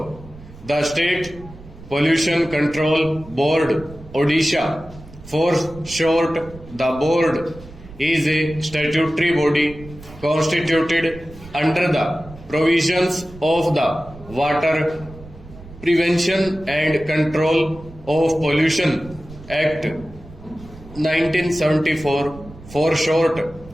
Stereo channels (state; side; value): noise; right; rumble, 18 dB below the sound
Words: The State Pollution Control Board, Odisha, for short, the board, is a statutory body constituted under the provisions of the Water Prevention and Control of Pollution Act 1974, for short,